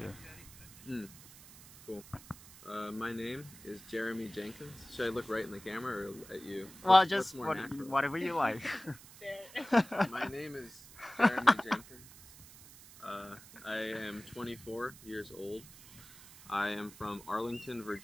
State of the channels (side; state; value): right; noise; hiss, 19 dB below the sound